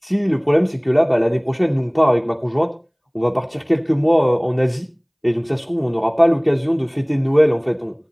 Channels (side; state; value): both; identical; correlation 1.00